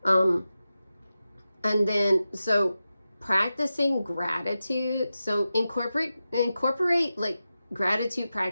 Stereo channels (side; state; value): both; inverted; correlation -0.92